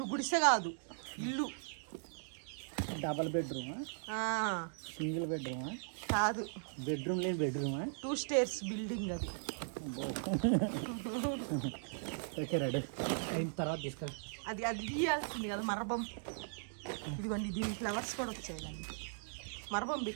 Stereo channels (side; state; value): left; silent; digital silence